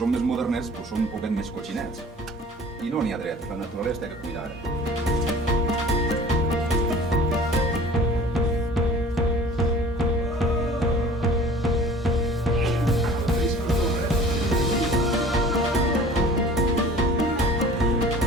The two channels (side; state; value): both; normal; correlation 0.46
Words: més modernets pues som un poquet més cotxinets i no n'hi ha dret, la naturalesa té que cuidar.